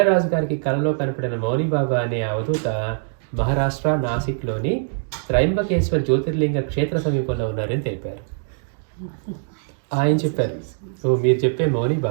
గారికి కలలో కనపడిన మౌని బాబా అనే అవధూత మహారాష్ట్ర నాసిక్లోని త్రయంబకేశ్వర్ జ్యోతిర్లింగ క్షేత్ర సమీపంలో ఉన్నారని తెలిపారు. ఆయన చెప్పారు, ఓ మీరు చెప్పే మౌని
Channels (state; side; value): silent; left; digital silence